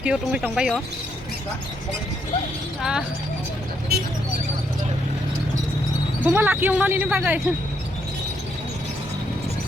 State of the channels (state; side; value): normal; both; correlation 0.75